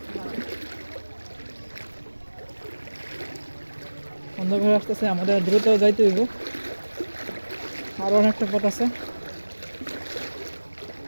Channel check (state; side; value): inverted; both; correlation -1.00